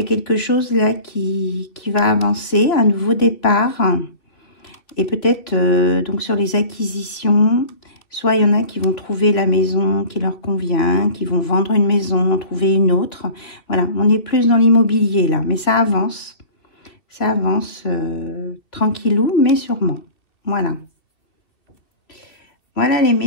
a quelque chose là qui va avancer, un nouveau départ. Et peut-être, donc, sur les acquisitions... Soit il y en a qui vont trouver la maison qui leur convient, qui vont vendre une maison, trouver une autre. Voilà, on est plus dans l'immobilier là, mais ça avance. Ça avance tranquillou, mais sûrement. Voilà. Voilà les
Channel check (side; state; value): right; late; 2.8 ms